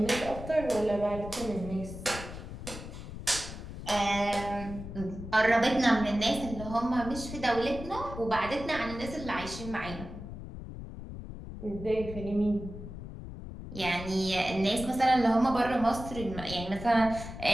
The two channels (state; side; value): noise; left; rumble, 11 dB below the sound